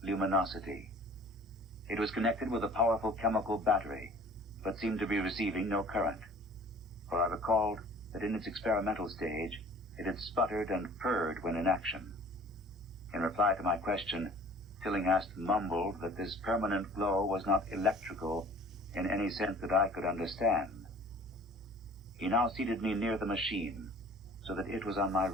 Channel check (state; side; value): normal; both; correlation 0.47